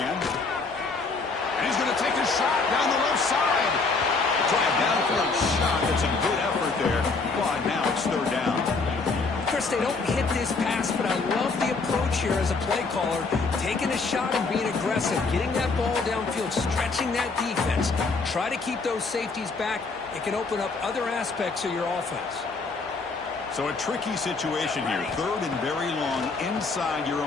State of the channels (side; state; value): right; quieter; 4.1 dB